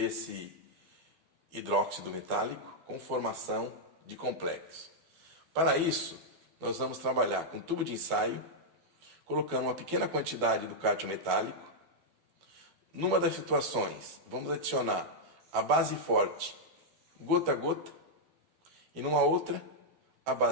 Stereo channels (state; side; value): late; left; 12 ms